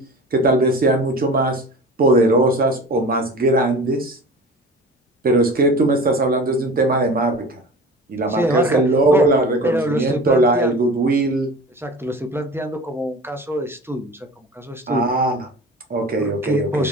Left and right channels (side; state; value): both; normal; correlation 0.37